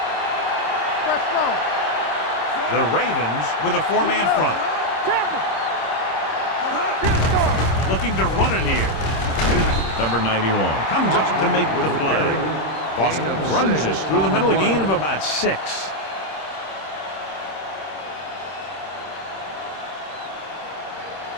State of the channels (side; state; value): right; late; 26 ms